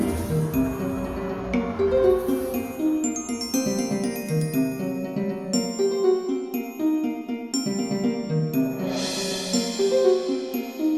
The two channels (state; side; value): identical; both; correlation 1.00